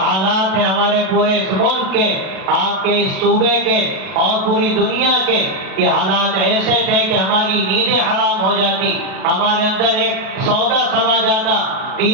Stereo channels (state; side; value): late; left; 37 ms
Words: ہیں ہمارے پورے اس ملک کے، آپ کے اس صوبے کے اور پوری دنیا کے، یہ حالات ایسے تھے کہ ہماری نیندیں حرام ہو جاتی، ہمارے اندر ایک سودا سما جاتا